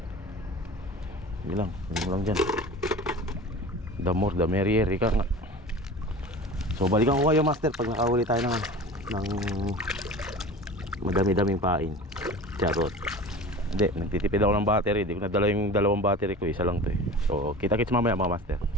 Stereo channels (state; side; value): normal; both; correlation 0.37